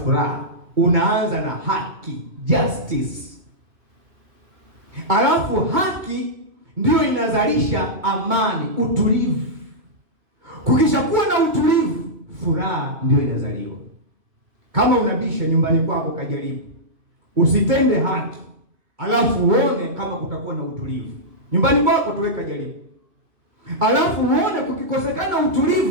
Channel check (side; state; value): left; late; 2.7 ms